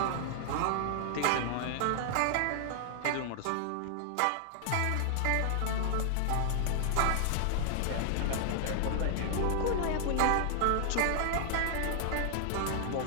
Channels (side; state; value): both; different; correlation 0.00